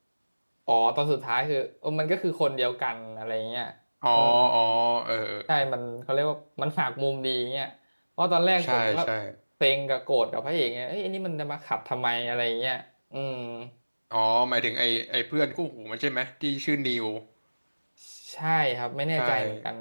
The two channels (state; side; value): inverted; both; correlation -1.00